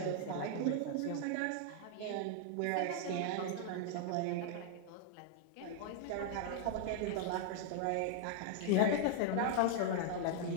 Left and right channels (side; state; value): both; different; correlation 0.00